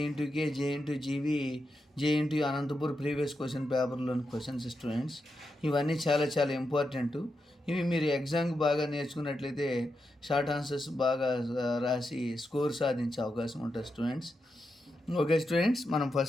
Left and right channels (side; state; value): both; normal; correlation 0.87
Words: NTU K, J NTU GV, J NTU Anantapur previous question పేపర్లోని questions students. ఇవన్నీ చాలా చాలా ఇంపార్టెంట్. ఇవి మీరు ఎగ్జామ్కి బాగా నేర్చుకున్నట్లయితే షార్ట్ ఆన్సర్స్ బాగా రాసి స్కోర్ సాధించే అవకాశం ఉంటుంది స్టూడెంట్స్. ఓకే స్టూడెంట్స్, మనం